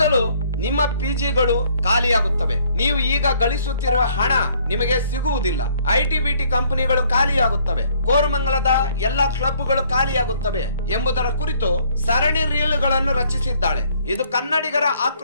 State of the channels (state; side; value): inverted; both; correlation -0.62